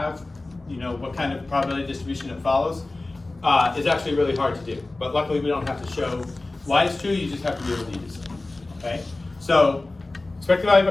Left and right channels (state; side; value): quieter; right; 3.0 dB